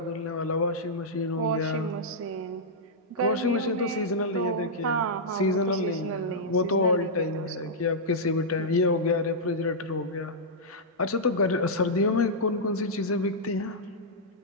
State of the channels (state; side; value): normal; both; correlation -0.10